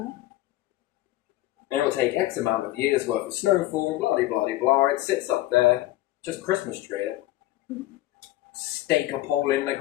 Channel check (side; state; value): right; quieter; 16.2 dB